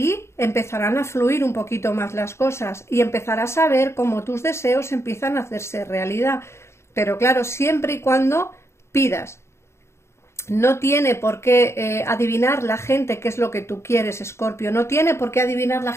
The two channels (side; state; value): right; late; 0.13 ms